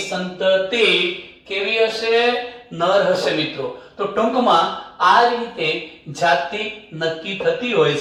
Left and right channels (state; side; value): identical; both; correlation 1.00